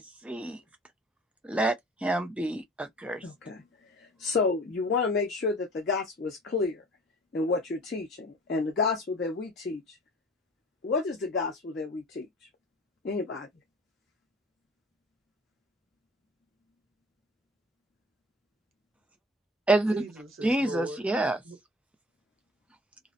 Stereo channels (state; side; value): normal; both; correlation 0.46